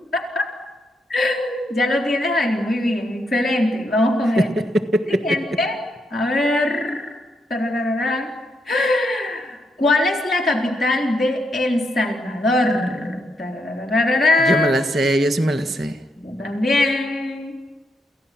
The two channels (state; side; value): normal; both; correlation 0.79